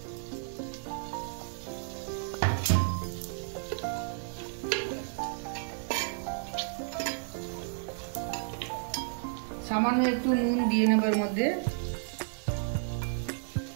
সামান্য একটু নুন দিয়ে নেব এর মধ্যে।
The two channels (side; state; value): left; silent; digital silence